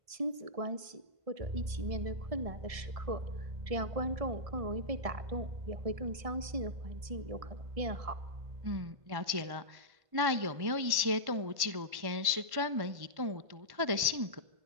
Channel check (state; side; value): late; left; 1.1 ms